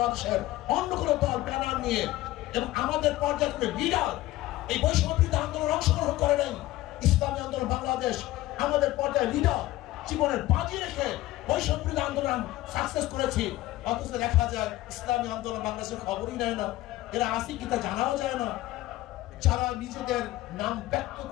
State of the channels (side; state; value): right; quieter; 16.5 dB